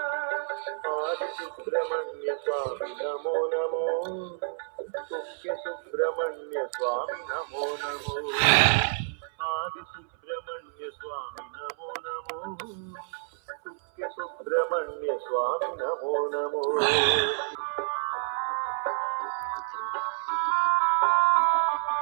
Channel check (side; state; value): left; silent; 59 dB below the other